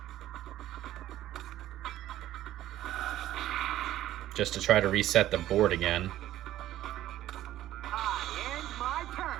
Just to try to reset the board again.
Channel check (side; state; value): left; quieter; 13.5 dB